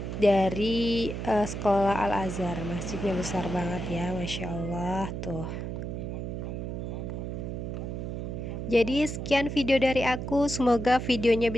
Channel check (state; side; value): noise; right; hum, 5 dB below the sound